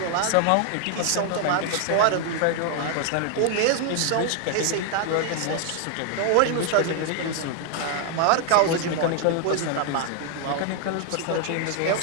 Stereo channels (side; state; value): both; different; correlation 0.00